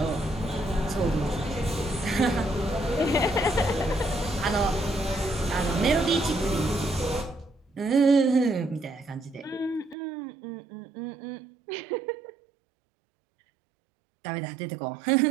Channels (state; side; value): drops out; left; at 10.0 s